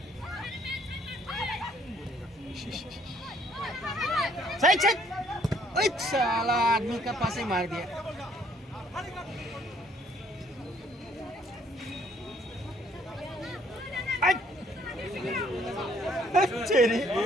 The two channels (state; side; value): normal; both; correlation 0.64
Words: साइड साइड ओए साला आदमी का पास ही मार दिया चेरी